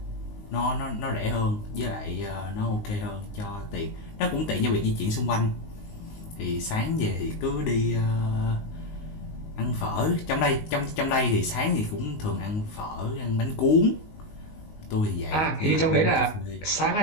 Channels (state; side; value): late; right; 19 ms